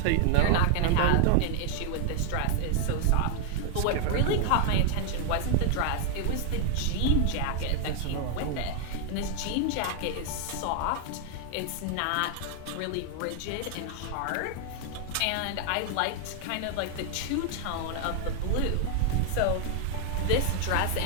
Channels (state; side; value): different; both; correlation 0.00